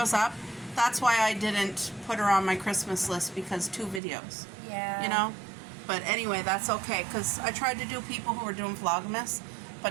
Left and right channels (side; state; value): left; drops out; at 4.0 s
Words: up. That's why I didn't put her on my Christmas list, because 2 videos. Yeah. You know? But anyway, that's okay, because I tried to do people who were doing Vlogmas,